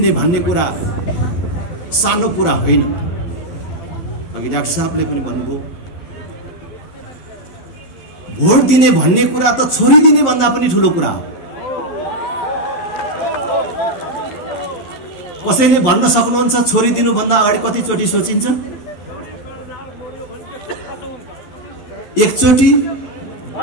भन्ने कुरा सानो कुरा होइन। अघि डाक्टर साहबले पनि भन्नुभयो, भोट दिने भन्ने कुरा त छोरी दिने भन्दा पनि ठूलो कुरा हो। कसैले भन्न सक्नुहुन्छ छोरी दिनु भन्दा अगाडि कति चोटी सोचिन्छ? एकचोटी,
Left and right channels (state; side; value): late; right; 11 ms